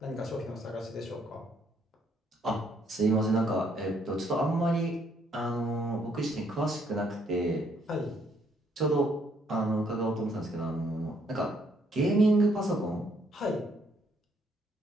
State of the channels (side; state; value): both; normal; correlation 0.69